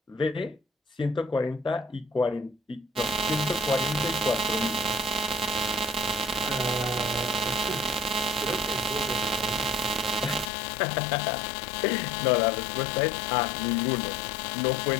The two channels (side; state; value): right; drops out; at 10.5 s